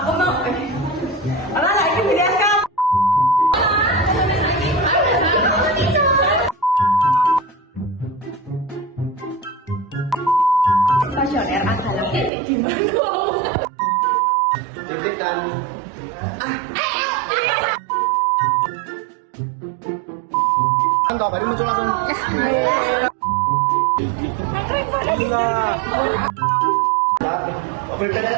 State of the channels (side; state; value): left; drops out; at 12.3 s